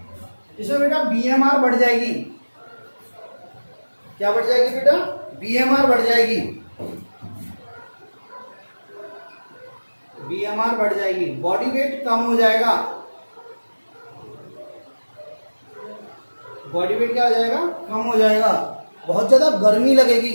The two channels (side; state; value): both; inverted; correlation -1.00